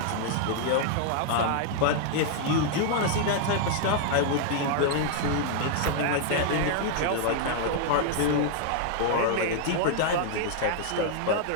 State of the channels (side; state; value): both; different; correlation 0.00